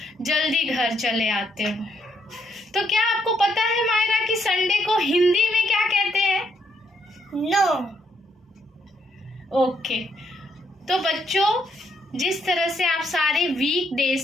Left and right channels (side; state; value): both; normal; correlation 0.74